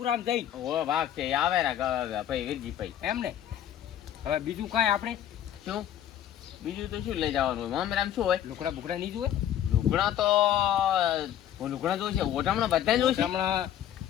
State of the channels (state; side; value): quieter; right; 11.0 dB